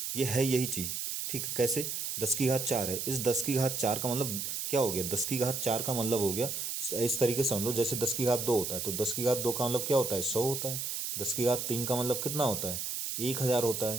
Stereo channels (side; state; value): right; noise; hiss, 3 dB below the sound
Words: ये है यही चीज। ठीक है, कैसे, 10 की घात 4 है, इस 10 की घात 4 का मतलब क्या हो गया, 10 की घात 4 का मतलब हो गया, इस तरीके से समझ लो, जैसे 10 की घात 2 होता है तो 10 की घात 2 का मतलब क्या होता है, 100 होता है। 10 की घात 3 का मतलब कितना होता है, 1,000 होता